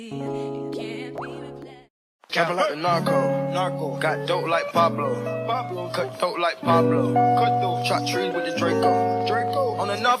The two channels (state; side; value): identical; both; correlation 1.00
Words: it can't be replaced. Capping like the narco. Got dope like Pablo. Cut throat like Pablo. Chop trees with the Draco. On the